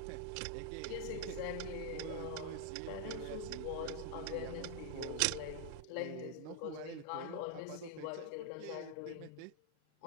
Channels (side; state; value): both; different; correlation 0.00